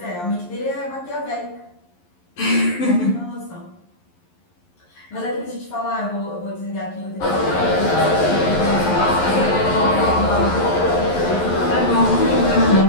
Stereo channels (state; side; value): late; right; 11 ms